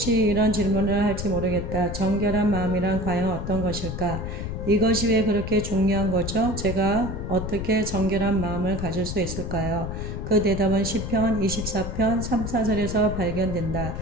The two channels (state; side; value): noise; left; rumble, 5 dB below the sound